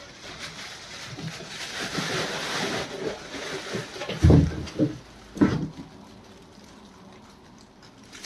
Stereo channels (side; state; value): both; identical; correlation 1.00